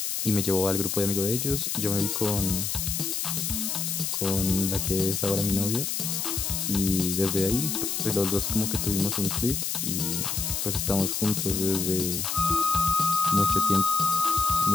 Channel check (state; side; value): noise; left; hiss, 1 dB below the sound